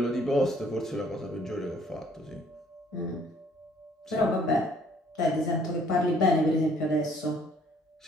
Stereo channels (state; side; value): normal; both; correlation 0.61